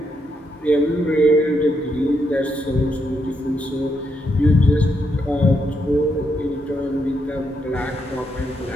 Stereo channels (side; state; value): both; normal; correlation 0.79